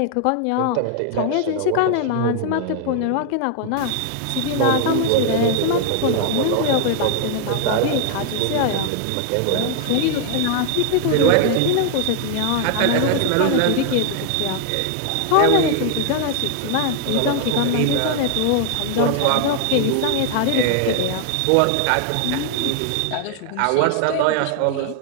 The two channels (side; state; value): both; different; correlation 0.00